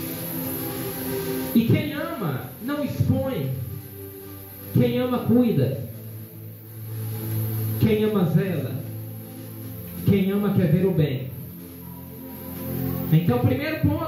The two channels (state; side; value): identical; both; correlation 1.00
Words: E quem ama não expõe. Quem ama cuida. Quem ama zela. Quem ama quer ver o bem. Então, primeiro